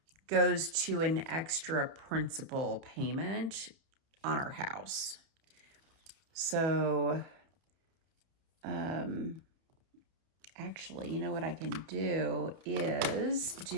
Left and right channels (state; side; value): late; left; 30 ms